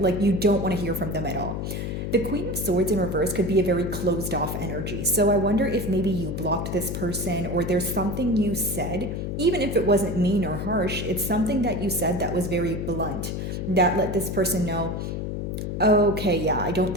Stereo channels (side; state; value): left; noise; hum, 4 dB below the sound